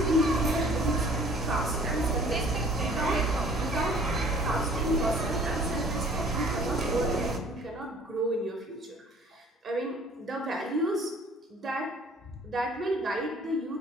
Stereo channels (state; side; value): normal; both; correlation 0.53